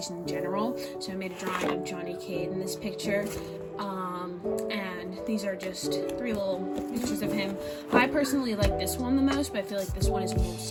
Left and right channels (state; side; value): identical; both; correlation 1.00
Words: in general, so I made a drawing of Johnny Cade in this picture. And these are just 3 little pictures of him. I personally like this one the most, but I feel like this one is